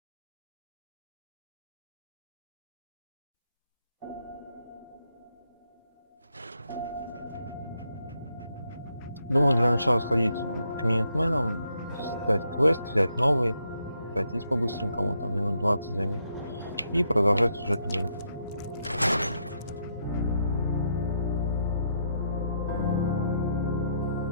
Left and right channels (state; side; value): inverted; both; correlation -0.76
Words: Думаю, для начала сходить к минитменам, стать квест, взять новый, пройтись по-быстренькому, там минут 20 займет, и продолжать сюжетную линию.